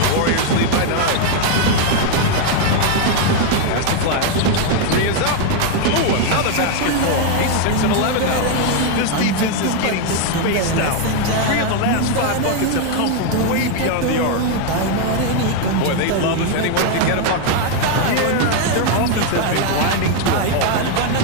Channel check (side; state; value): both; different; correlation 0.01